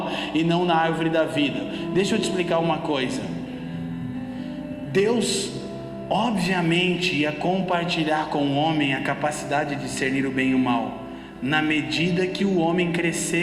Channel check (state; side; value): identical; both; correlation 1.00